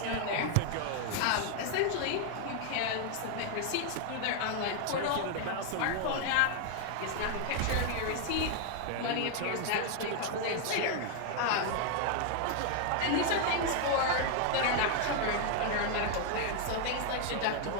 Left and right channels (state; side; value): different; both; correlation 0.00